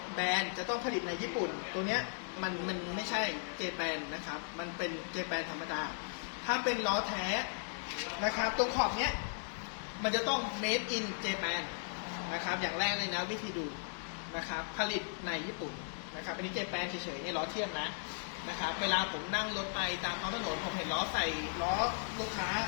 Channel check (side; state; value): right; silent; digital silence